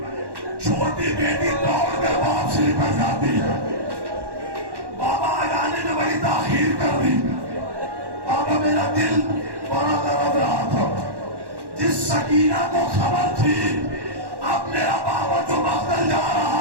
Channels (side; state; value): left; late; 1.1 ms